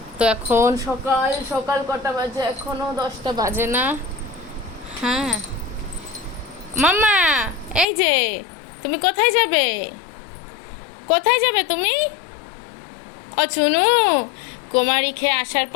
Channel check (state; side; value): drops out; right; at 7.9 s